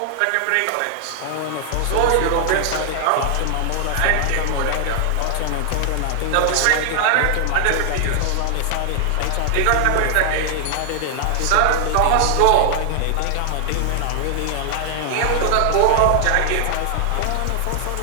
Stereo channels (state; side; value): different; both; correlation 0.00